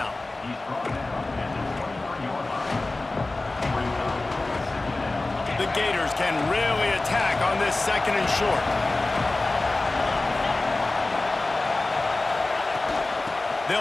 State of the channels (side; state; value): right; quieter; 3.1 dB